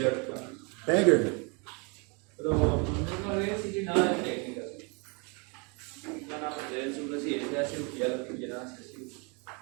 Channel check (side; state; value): left; quieter; 32.6 dB